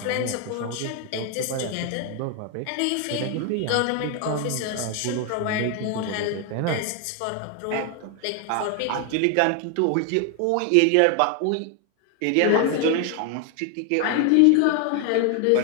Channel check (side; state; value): both; different; correlation 0.01